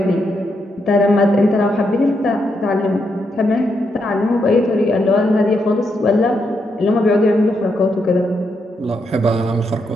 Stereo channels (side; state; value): both; normal; correlation 0.80